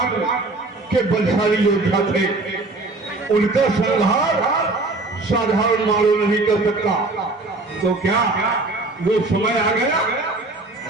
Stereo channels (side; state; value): left; quieter; 3.2 dB